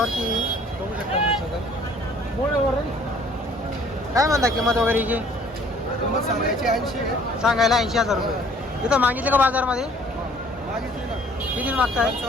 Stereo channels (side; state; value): both; normal; correlation 0.56